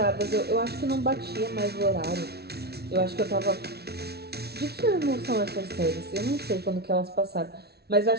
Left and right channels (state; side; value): late; left; 0.47 ms